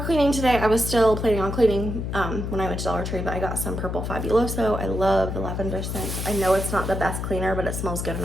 cleaning today, I was still planning on cleaning when I went to Dollar Tree, but I got some Purple Fabuloso. I love the lavender scent. I know it's not the best cleaner, but it smells good and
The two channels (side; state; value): left; noise; hum, 4 dB below the sound